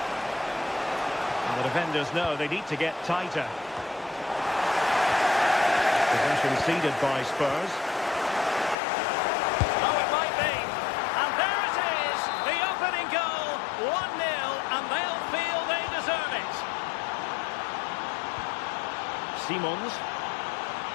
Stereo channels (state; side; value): drops out; right; at 8.8 s